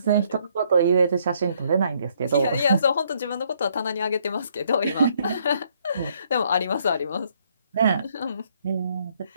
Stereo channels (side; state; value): both; inverted; correlation -0.68